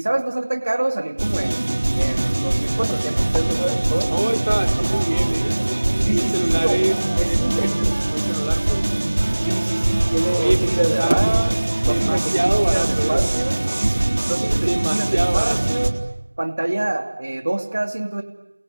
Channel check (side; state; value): both; inverted; correlation -1.00